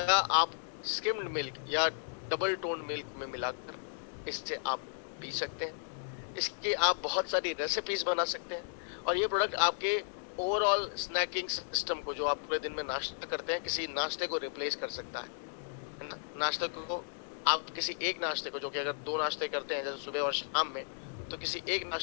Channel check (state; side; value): silent; right; digital silence